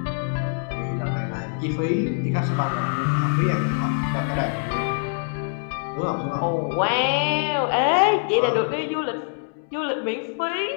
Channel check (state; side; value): silent; right; 62 dB below the other